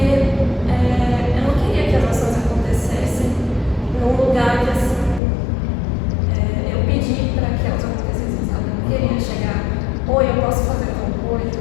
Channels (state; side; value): drops out; right; at 5.2 s